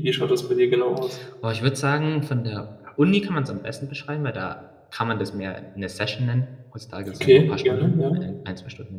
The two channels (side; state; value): both; identical; correlation 1.00